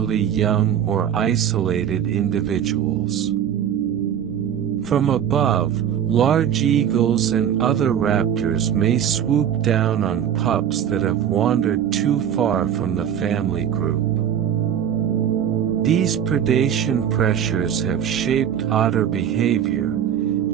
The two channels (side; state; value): left; quieter; 9.1 dB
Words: young or isolated individuals. From above, large eagles and other raptors may swoop down on pups that have wandered too far from the family group. These predation pressures have shaped otter behavior.